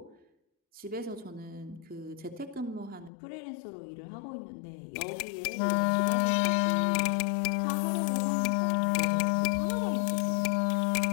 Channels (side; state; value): right; drops out; at 3.1 s